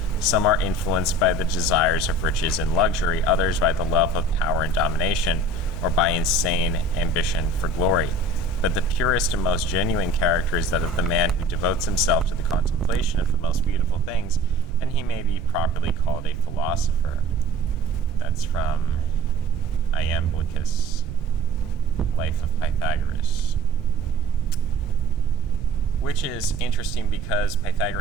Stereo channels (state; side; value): noise; right; rumble, 9 dB below the sound